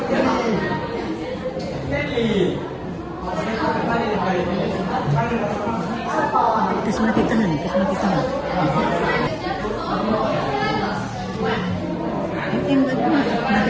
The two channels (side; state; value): both; identical; correlation 1.00